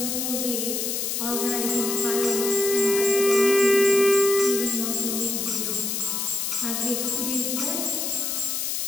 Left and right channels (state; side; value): noise; left; hiss, 1 dB below the sound